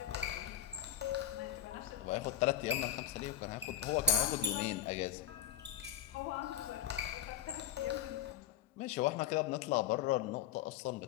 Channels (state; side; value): quieter; right; 9.8 dB